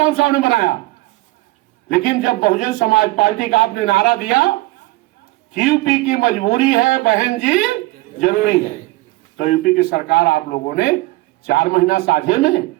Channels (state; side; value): quieter; left; 20.2 dB